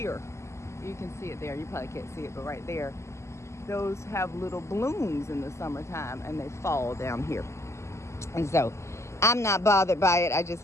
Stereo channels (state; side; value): late; right; 0.13 ms